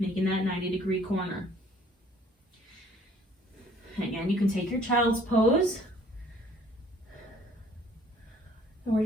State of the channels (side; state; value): both; normal; correlation 0.57